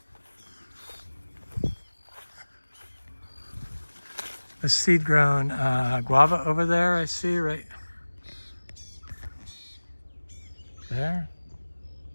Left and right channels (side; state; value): both; inverted; correlation -1.00